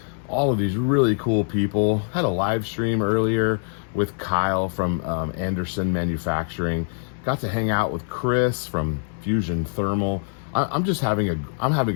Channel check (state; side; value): silent; right; digital silence